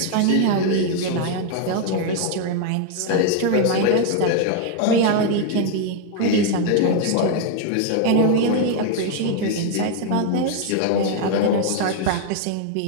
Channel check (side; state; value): both; different; correlation 0.00